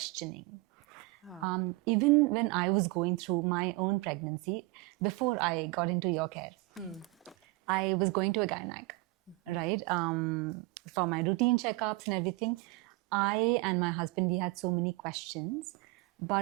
Even when I was going through my own pregnancy, before I got into your care, I was going to a gynec, right? For my routine checkups and everything. I and my husband, we had so many questions,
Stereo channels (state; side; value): quieter; left; 23.7 dB